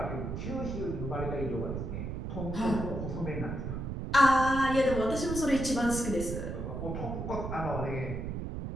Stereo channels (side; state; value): right; noise; rumble, 5 dB below the sound